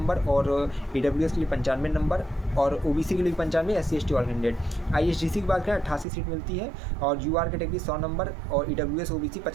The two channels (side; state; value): left; drops out; at 6.1 s